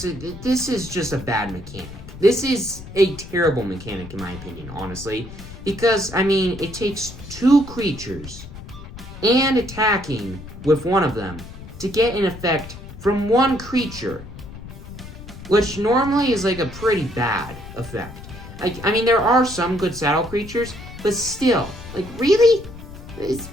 this is just a bad mechanic. This is a terrible mechanic in my opinion, honestly, because, I mean, it takes 2 creatures and attacking with one of them to get an effect from one creature, which normally is like a pretty bad effect. Like, I mean, there are some good saddle creatures, but still, like, really?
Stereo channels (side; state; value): left; noise; rumble, 14 dB below the sound